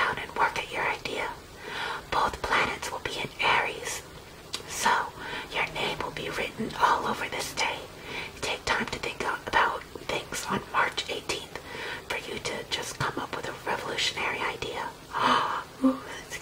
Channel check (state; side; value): identical; both; correlation 1.00